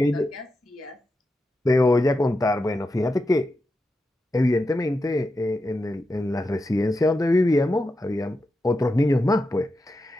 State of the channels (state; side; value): normal; both; correlation 0.88